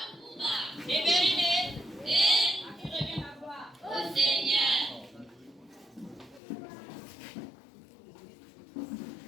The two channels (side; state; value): right; drops out; at 6.4 s